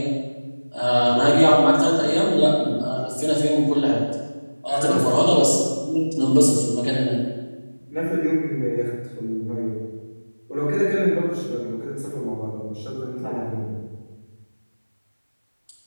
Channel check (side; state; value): both; inverted; correlation -1.00